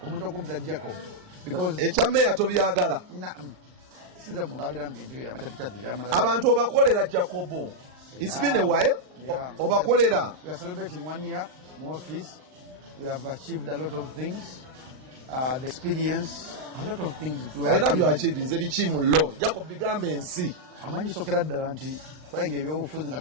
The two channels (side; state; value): left; late; 39 ms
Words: Omutuuze Jacob because Mayor tobyagala. Abantu obakolera Jacobo. It's been a while. Yeah. Obakolera. We are celebrating 1 year in office. We have achieved a lot of things. The experience, a lot of things. I love your achievements. Ebichimulo. Jacob bigambe ensi. Amanyi sokera ddala nti twayenga ebyobufuzi nga